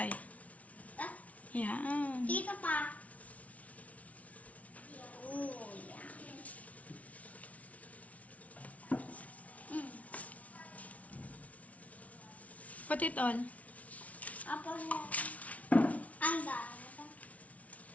Ah, Yan. dito pa. Oh, yan. Put it all. Apa mo? Ang dami.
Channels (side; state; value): right; late; 0.068 ms